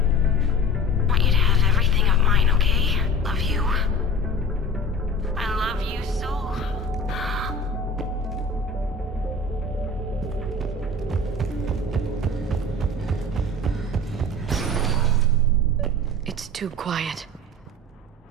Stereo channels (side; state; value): both; normal; correlation 0.38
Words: Want you to have everything of mine, okay? Love you. I love you so. It's too quiet.